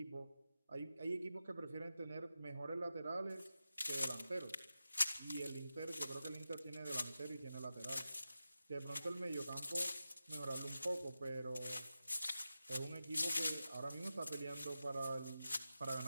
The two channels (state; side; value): inverted; both; correlation -0.91